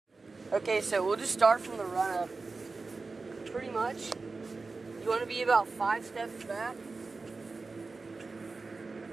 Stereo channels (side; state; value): left; quieter; 3.9 dB